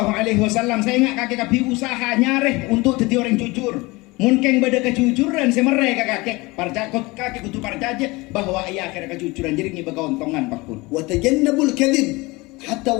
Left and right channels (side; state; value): right; quieter; 23.3 dB